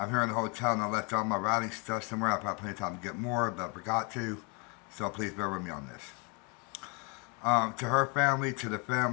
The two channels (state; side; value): quieter; right; 32.9 dB